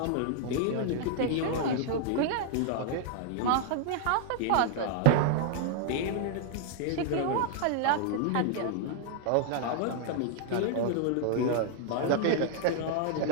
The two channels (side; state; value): both; different; correlation 0.00